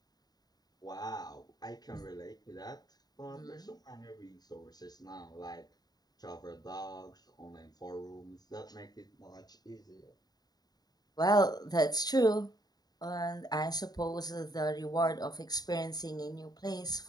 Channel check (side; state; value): right; late; 0.19 ms